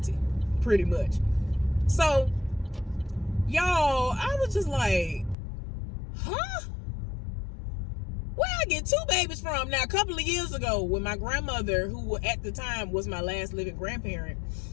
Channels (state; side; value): drops out; right; at 5.4 s